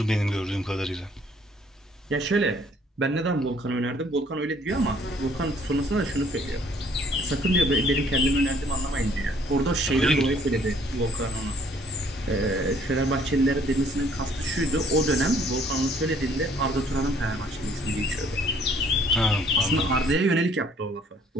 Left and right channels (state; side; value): normal; both; correlation 0.61